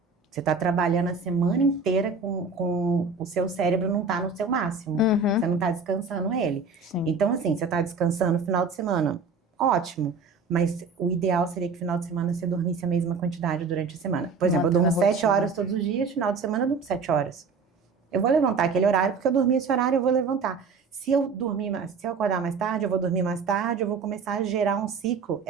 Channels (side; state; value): left; quieter; 4.7 dB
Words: Você está trabalhando a semana inteira com o seu cérebro não está no seu máximo. Você não está descansando ele. Sim. Então, assim, você está descansando no final de semana, ótimo. Mas o ideal seria que no final de semana você dormisse a mesma quantidade durante a semana. Por exemplo, eu durmo 7 horas todos os dias, final de semana eu durmo 7 horas. Eu vou levantar aquele horário, porque eu dormi esse horário, eu vou levantar. Se eu acordar mais tarde, eu vou dormir mais tarde, eu vou começar a gerar um ciclo.